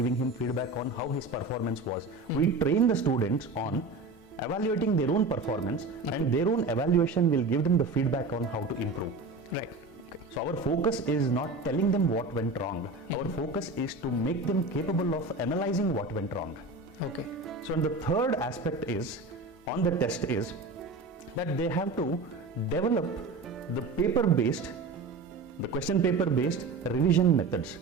him feedback on how his performance was. We train the students on evaluating their own performance, and their own evaluation will give them the feedback on how to improve. Right. Okay. So our focus is not telling them what went wrong. Our focus is to make them capable of analyzing what went wrong. Okay. So and the third aspect is on the test is that they have to develop the question paper based revision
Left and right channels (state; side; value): quieter; left; 3.4 dB